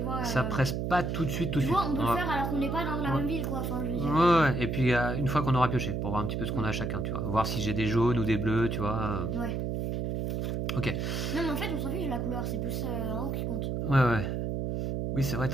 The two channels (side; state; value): right; noise; hum, 1 dB below the sound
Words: vois. Ça presse pas tout de suite, tout de Tu suite. vois, on peut le faire alors qu'on n'est pas dans la Ouais. même ville, quoi. Enfin, je veux dire. Ouais, et puis une fois qu'on aura pioché, pour voir un petit peu ce qu'on a chacun, tu vois. Voir si j'ai des jaunes ou des bleus, tu vois. Ouais. Ok. Non, mais en fait, on s'en fiche de la couleur, c'est plus en haut qui compte. Ouais. Oui, c'est vrai,